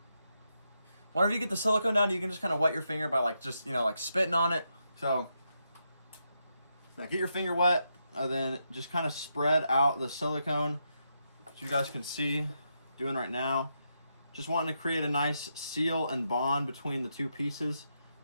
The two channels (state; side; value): inverted; both; correlation -0.83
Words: Whenever you get the silicone down, you can just kind of wet your finger by like just, you know, like spitting on it. So now get your finger wet, and then just kind of spread out the silicone, as you guys can see, doing right now. Just wanting to create a nice seal and bond between the two pieces,